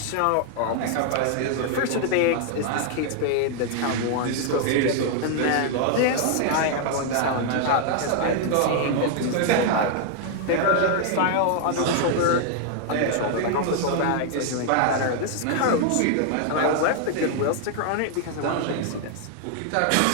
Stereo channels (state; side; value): different; both; correlation 0.00